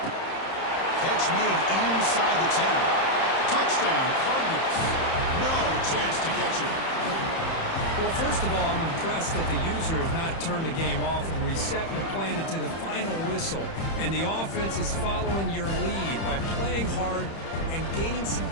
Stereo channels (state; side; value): late; right; 31 ms